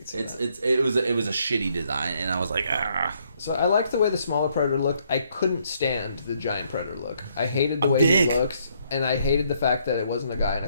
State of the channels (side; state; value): both; inverted; correlation -0.70